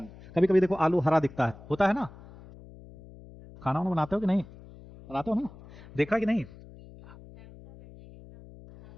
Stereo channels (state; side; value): noise; left; hum, 20 dB below the sound